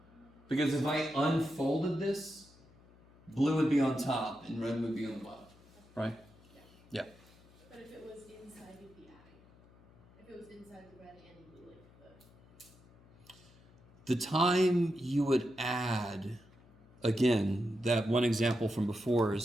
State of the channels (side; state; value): left; noise; hum, 26 dB below the sound